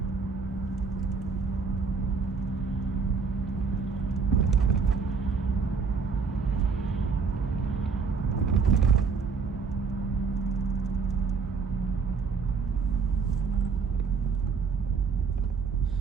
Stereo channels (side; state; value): left; quieter; 5.1 dB